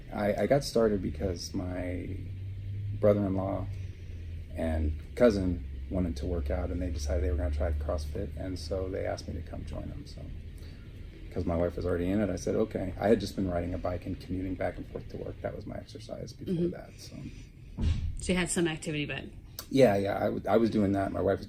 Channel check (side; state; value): both; identical; correlation 1.00